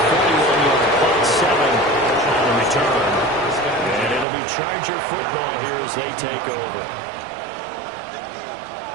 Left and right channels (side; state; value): left; drops out; at 4.2 s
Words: 41-yard punt, 7 on the return. And it'll be Charger football here as they take over.